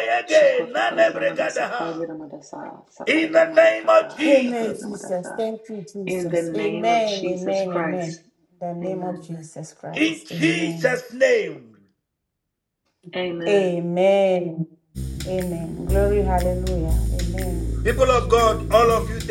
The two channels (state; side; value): identical; both; correlation 1.00